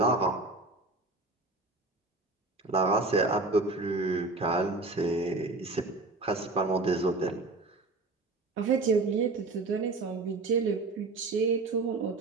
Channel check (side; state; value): left; quieter; 3.4 dB